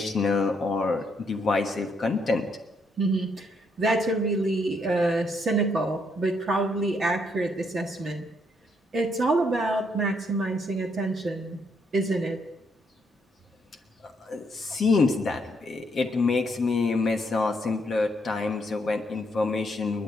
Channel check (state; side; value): normal; both; correlation 0.74